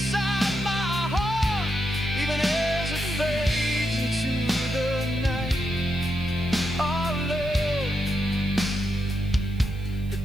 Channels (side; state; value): right; noise; hiss, 27 dB below the sound